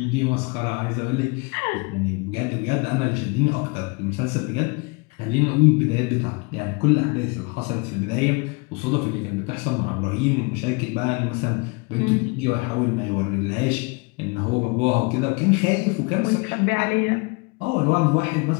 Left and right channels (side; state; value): right; quieter; 29.2 dB